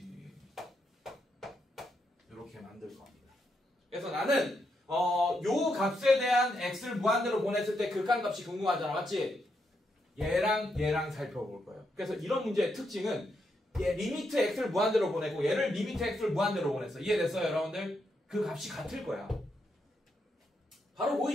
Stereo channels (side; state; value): both; normal; correlation 0.81